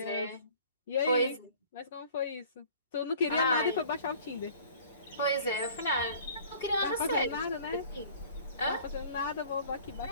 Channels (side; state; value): both; inverted; correlation -0.50